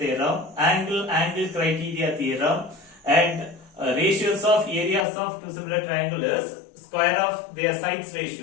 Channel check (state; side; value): drops out; right; at 5.1 s